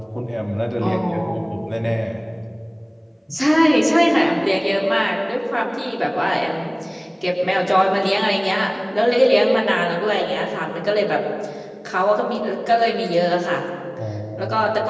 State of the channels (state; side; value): identical; both; correlation 1.00